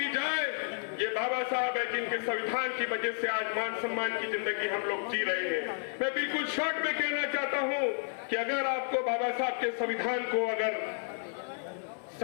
जाए, ये बाबा साहब है जिनके संविधान की वजह से आज मान सम्मान की जिंदगी हम लोग जी रहे हैं। मैं बिल्कुल शॉर्ट में कहना चाहता हूं कि अगर आपको बाबा साहब के संविधान को अगर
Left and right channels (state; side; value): silent; right; 55 dB below the other